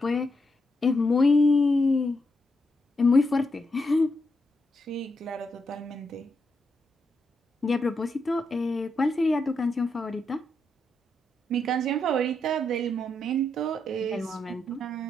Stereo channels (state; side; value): normal; both; correlation 0.82